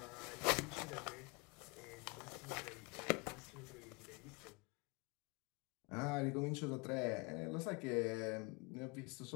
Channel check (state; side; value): quieter; right; 28.5 dB